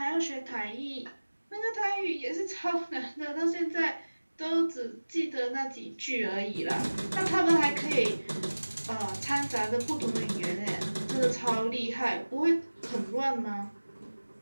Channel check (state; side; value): inverted; both; correlation -1.00